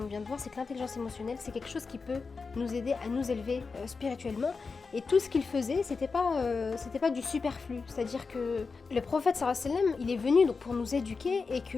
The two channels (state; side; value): quieter; right; 4.6 dB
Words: vient de voir, c'est que l'intelligence émotionnelle, c'est quelque chose qui peut nous aider à nous élever spirituellement. Et tout ce qu'il faisait, c'était pas du superflu. C'est-à-dire que le prophète sallallahu alayhi wa sallam, il est venu donc pour nous éduquer et